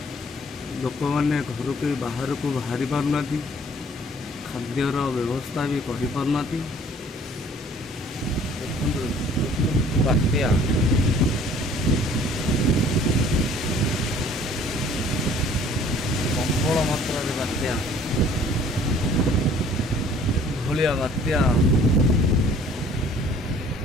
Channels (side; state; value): both; normal; correlation 0.54